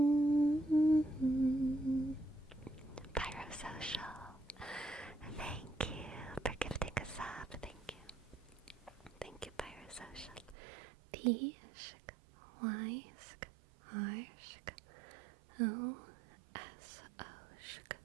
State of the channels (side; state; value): left; drops out; at 10.6 s